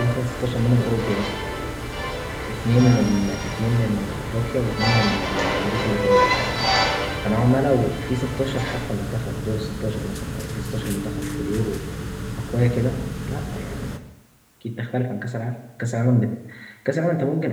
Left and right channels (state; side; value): identical; both; correlation 1.00